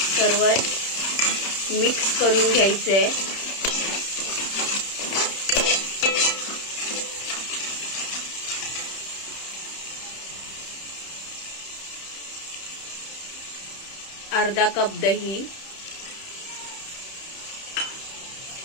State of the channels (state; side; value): late; right; 31 ms